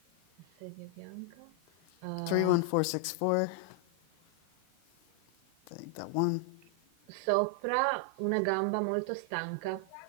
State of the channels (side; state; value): both; different; correlation 0.00